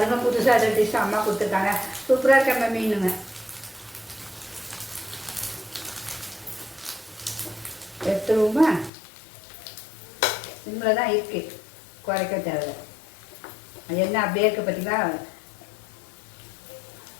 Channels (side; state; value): right; drops out; at 8.9 s